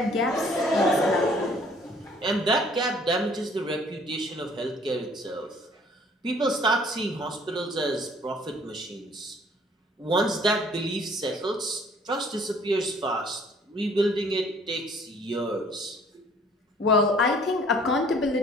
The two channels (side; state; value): both; normal; correlation 0.57